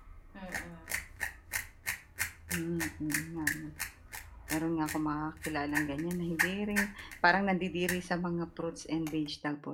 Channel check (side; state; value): both; identical; correlation 1.00